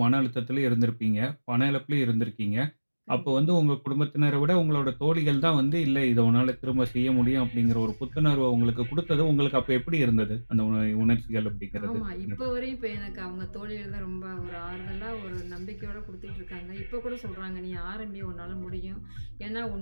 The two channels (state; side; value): inverted; both; correlation -1.00